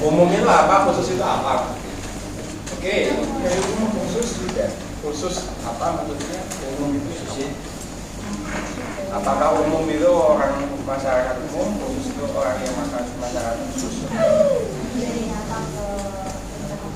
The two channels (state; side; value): identical; both; correlation 1.00